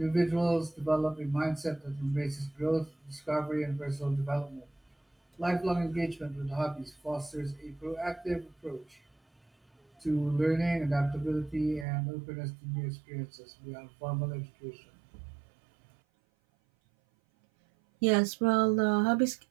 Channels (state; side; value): drops out; left; at 11.9 s